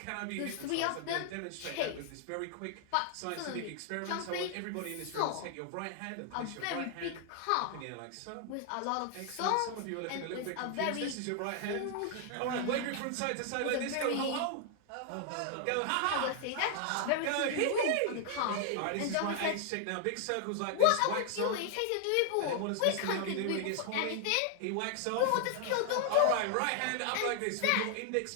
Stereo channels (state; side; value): different; both; correlation 0.00